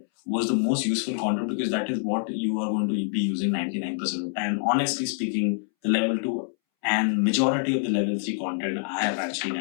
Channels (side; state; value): right; silent; 61 dB below the other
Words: was the most useful content because that is what you are going to be using 99% of the time. Honestly speaking, the level 2 and majority of the level 3 content I have actually